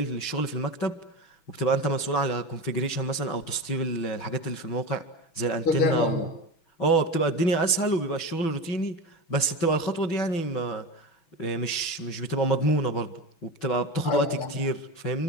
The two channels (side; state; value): right; late; 6.1 ms